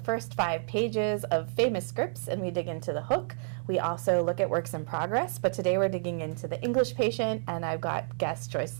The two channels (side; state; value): left; silent; digital silence